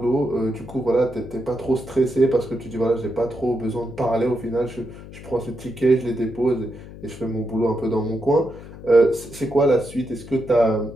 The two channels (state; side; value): noise; left; hum, 15 dB below the sound